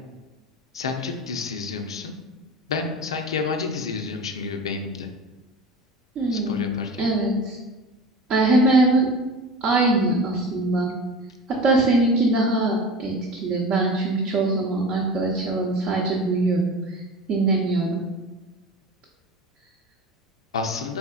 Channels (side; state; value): both; normal; correlation 0.34